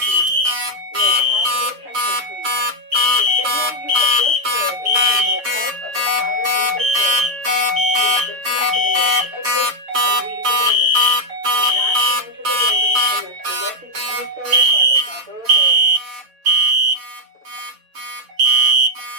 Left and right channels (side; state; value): left; late; 7.3 ms